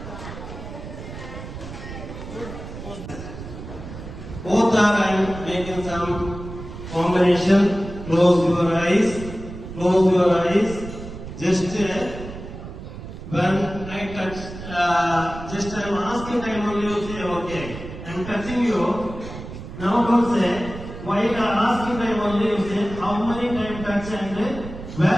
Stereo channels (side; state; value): right; noise; rumble, 11 dB below the sound